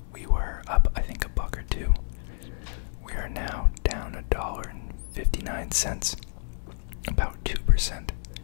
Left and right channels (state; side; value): silent; right; 59 dB below the other